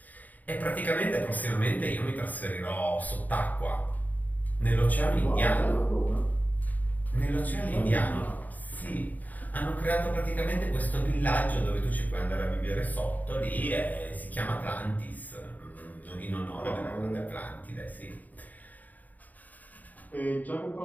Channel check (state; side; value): late; right; 0.080 ms